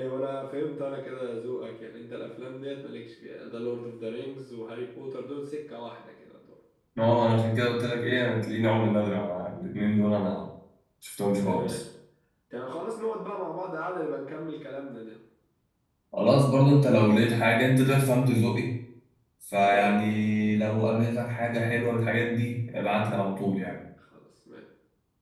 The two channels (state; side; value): identical; both; correlation 1.00